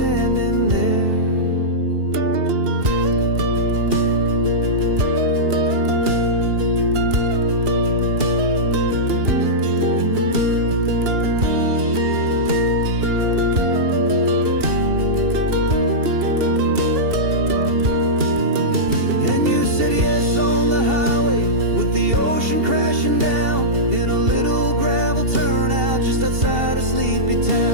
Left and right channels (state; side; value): late; left; 2.8 ms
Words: there. Crashing down in a little gravel turnout just outside of Sleepy